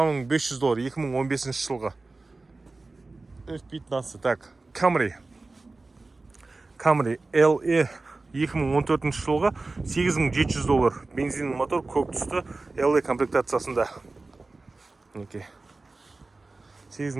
500 доллар 2015 жылғы. F15. Так, Camry LE 2014 жылғы 8700 доллар. Бензин мотор, көк түсті LE комплектациясында.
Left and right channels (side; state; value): left; quieter; 3.4 dB